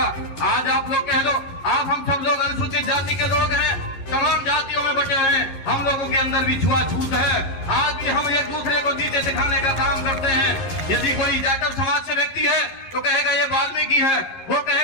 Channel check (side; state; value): right; late; 11 ms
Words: आज आप लोग कह लो, आप हम सब लोग अनुसूचित जाति के लोग हैं, तमाम जातियों में बटे हैं, हम लोगों के अंदर भी छुआछूत है। आज भी हम एक दूसरे को नीचे दिखाने का काम करते हैं। यदि कोई जाटव समाज से व्यक्ति है तो कहेगा ये वाल्मीकि है, वो